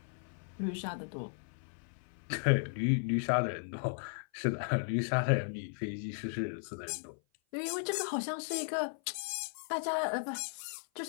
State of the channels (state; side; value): silent; right; 54 dB below the other